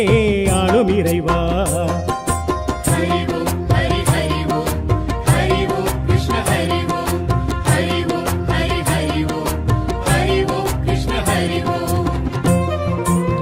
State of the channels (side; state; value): both; identical; correlation 1.00